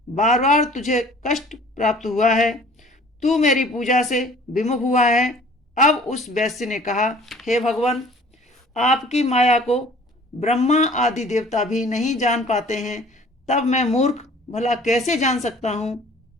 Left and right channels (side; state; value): both; normal; correlation 0.51